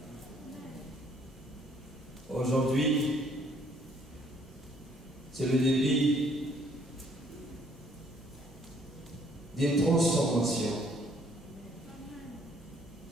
Aujourd'hui, c'est le début d'une transformation.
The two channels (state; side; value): normal; both; correlation 0.63